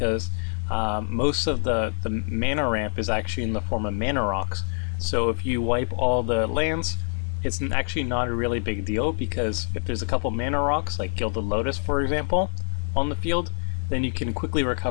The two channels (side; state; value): right; silent; digital silence